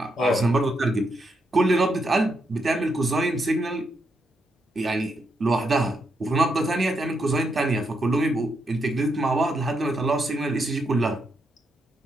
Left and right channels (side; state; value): both; normal; correlation 0.80